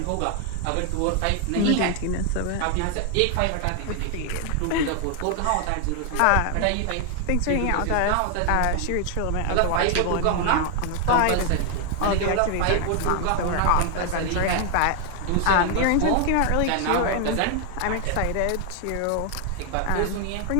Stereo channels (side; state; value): both; different; correlation 0.00